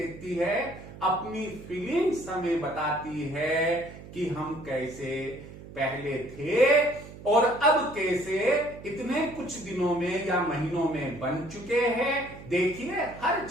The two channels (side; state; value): right; noise; hum, 16 dB below the sound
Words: है, अपनी फीलिंग्स हमें बताती है कि हम कैसे पहले थे और अब कैसे इतने कुछ दिनों में या महीनों में बन चुके हैं। देखिए, हर